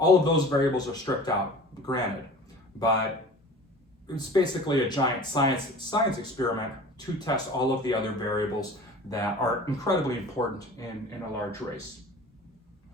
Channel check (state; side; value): normal; both; correlation 0.41